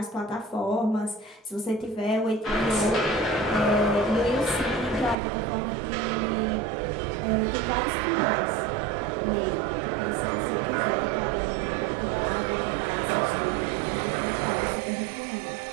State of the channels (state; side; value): drops out; left; at 5.2 s